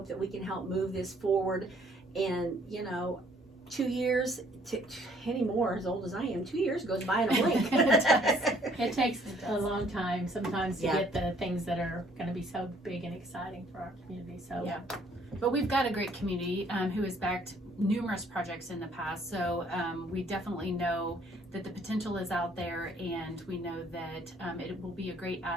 that we can help move this forward. And 2 years, any more as old as I am, 2 years goes by in a blink. It takes a long time sometimes to Yeah. get the things that are going to be so big and exciting for our community. So Yeah. But we've got a great community who has backed numerous projects in the past. So we definitely know that the potential is out there, and we know that it will be a great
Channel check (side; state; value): both; normal; correlation 0.61